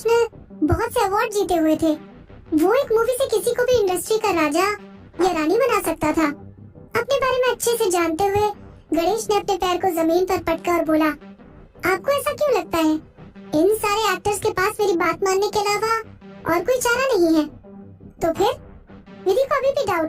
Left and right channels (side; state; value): both; identical; correlation 1.00